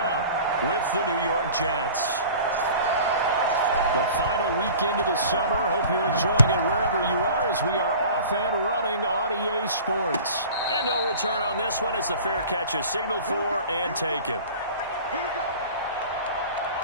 with the New York Jets. The final weekend of the summer. Hope you're enjoying it wherever you are as we are off and running on EA Sports. And no return on this one as the fair catch is signaled for and taken.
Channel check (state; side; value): inverted; both; correlation -0.42